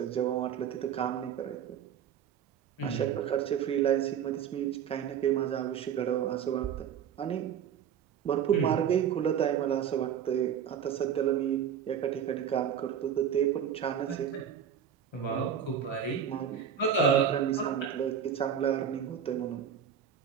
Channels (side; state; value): left; quieter; 8.4 dB